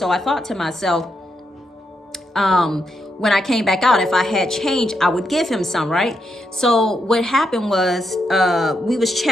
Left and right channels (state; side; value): normal; both; correlation 0.81